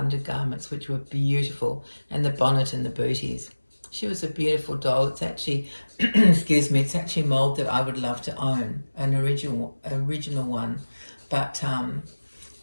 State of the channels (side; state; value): both; inverted; correlation -1.00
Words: which were beautiful, and the bonnet and the booties. She was a beautiful doll. It's actually, excuse me, it's actually a mould that I would love to own, an original one. But